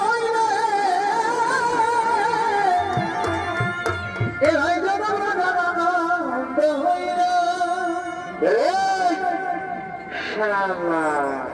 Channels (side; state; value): both; identical; correlation 1.00